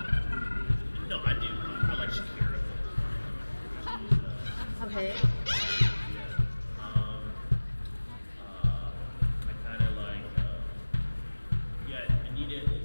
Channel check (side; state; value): both; inverted; correlation -1.00